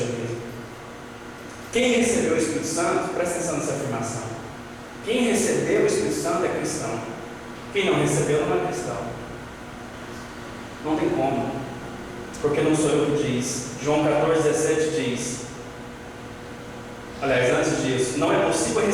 Quem recebeu o Espírito Santo, presta atenção nessa afirmação. Quem recebeu o Espírito Santo é cristão. Quem não recebeu não é cristão. Não tem como. Porque não sou eu que diz. João 14,17 diz. Aliás, antes disso, não é possível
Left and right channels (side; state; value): both; identical; correlation 1.00